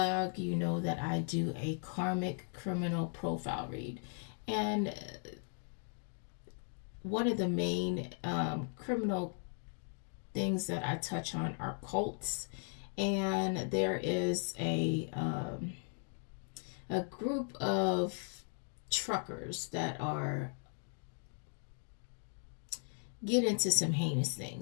you know that I do a karmic criminal profile read. And one of the main criminal things that I touch on are cults. And there is a group of truckers that are get into some heinous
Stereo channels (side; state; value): right; silent; 53 dB below the other